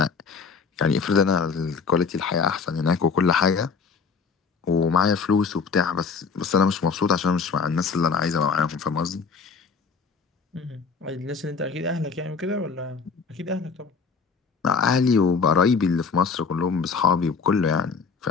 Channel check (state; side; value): quieter; right; 5.2 dB